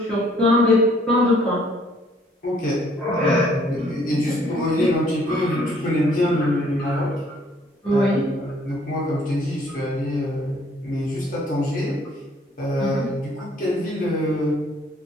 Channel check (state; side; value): normal; both; correlation 0.62